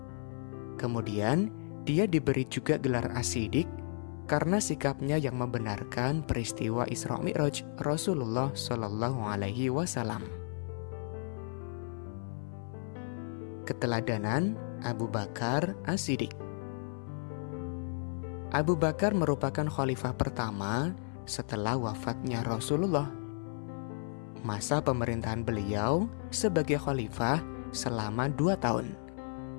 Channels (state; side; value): silent; right; 56 dB below the other